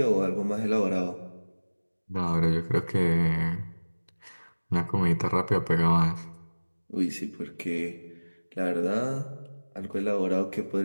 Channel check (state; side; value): inverted; both; correlation -1.00